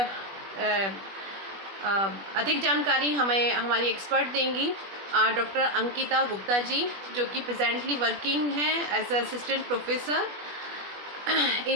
अधिक जानकारी हमें हमारी एक्सपर्ट देंगी डॉक्टर अंकिता गुप्ता जी, जो कि प्रेजेंटली वर्किंग हैं as assistant professor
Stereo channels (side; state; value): left; late; 21 ms